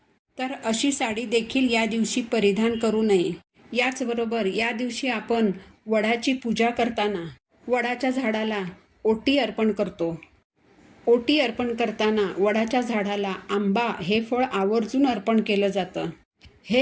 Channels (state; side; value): identical; both; correlation 1.00